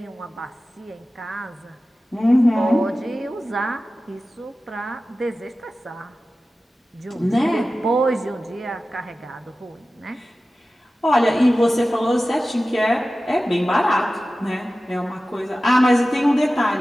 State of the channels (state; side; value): normal; both; correlation 0.95